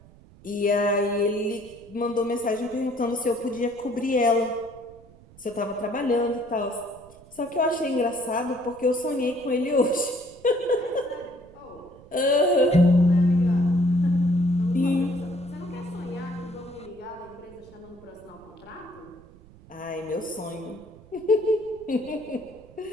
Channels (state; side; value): noise; right; rumble, 23 dB below the sound